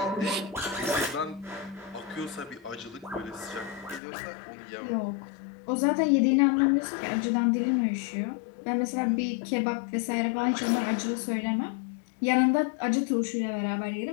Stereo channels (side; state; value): right; drops out; at 4.0 s